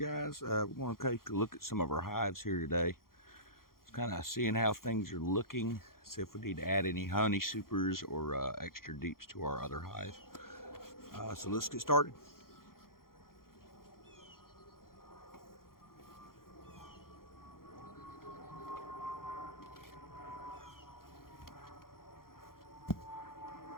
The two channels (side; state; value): right; late; 0.92 ms